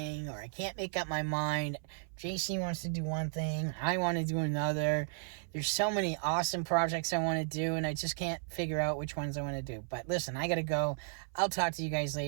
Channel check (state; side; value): silent; left; 55 dB below the other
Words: or I can't make up my mind. JC wants to do one thing, I want to do another. There's so many awesome projects I want to do, and I just can't figure out which ones I want to do. But listen, I gotta go. I'll talk to you guys